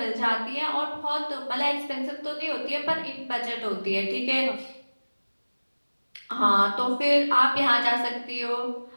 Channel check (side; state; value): both; inverted; correlation -1.00